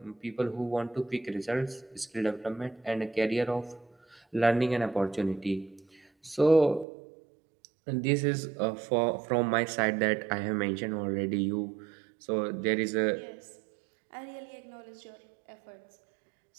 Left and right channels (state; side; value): drops out; left; at 6.9 s